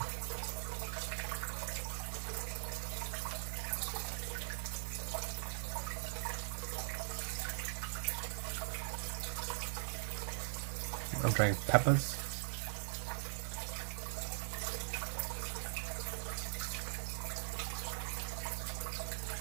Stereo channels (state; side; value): silent; left; digital silence